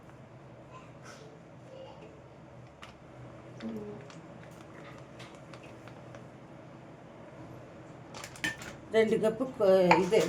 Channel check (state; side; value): identical; both; correlation 1.00